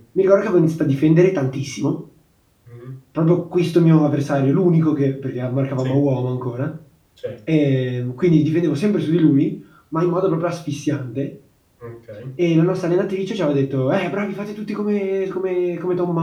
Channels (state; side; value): identical; both; correlation 1.00